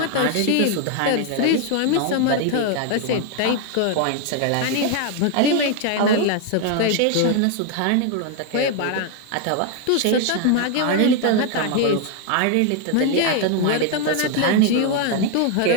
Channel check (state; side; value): different; both; correlation 0.01